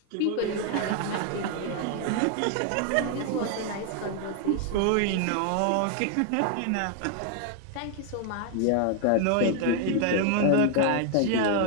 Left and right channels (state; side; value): different; both; correlation 0.00